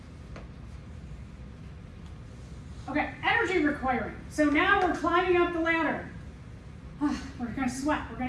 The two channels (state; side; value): identical; both; correlation 1.00